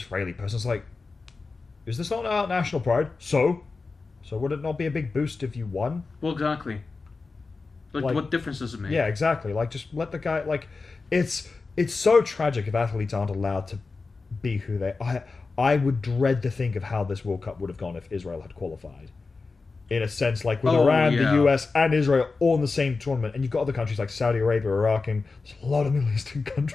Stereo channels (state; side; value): quieter; right; 4.1 dB